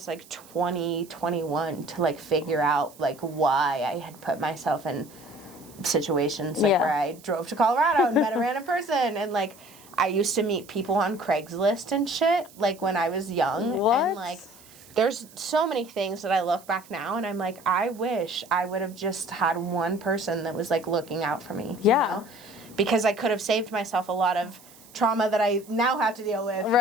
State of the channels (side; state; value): right; noise; hiss, 23 dB below the sound